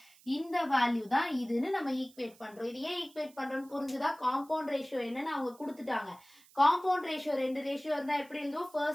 இந்த வேல்யூ தான் இதுன்னு நம்ம ஈக்குவேட் பண்றோம். இது ஏன் ஈக்குவேட் பண்றோம்னு புரிஞ்சுதா, காம்பவுண்ட் ரேஷியோ என்னன்னு அவங்க கொடுத்துட்டாங்க. காம்பவுண்ட் ரேஷியோ 2 ரேஷியோ இருந்தா எப்படி எழுதுவோம்,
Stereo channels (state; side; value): noise; right; hiss, 26 dB below the sound